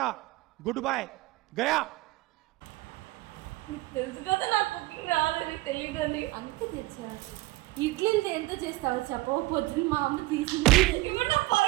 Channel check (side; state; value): left; quieter; 19.6 dB